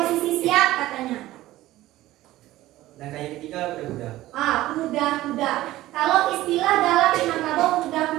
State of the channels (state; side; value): quieter; left; 16.1 dB